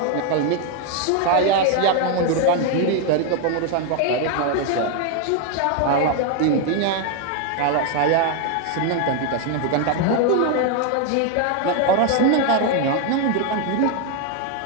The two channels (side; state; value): both; different; correlation 0.01